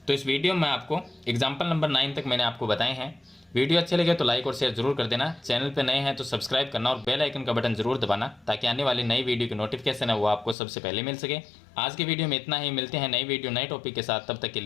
तो इस वीडियो में आपको एग्जाम्पल नंबर 9 तक मैंने आपको बताए हैं। वीडियो अच्छे लगे तो लाइक और शेयर जरूर कर देना। चैनल पे नए हैं तो सब्सक्राइब करना और बेल आइकन का बटन जरूर दबाना, ताकि आने वाली नई वीडियो की नोटिफिकेशन है वो आपको सबसे पहले मिल सके। आज की वीडियो में इतना ही, मिलते हैं नई वीडियो नए टॉपिक के साथ, तब तक के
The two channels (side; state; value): right; drops out; at 10.6 s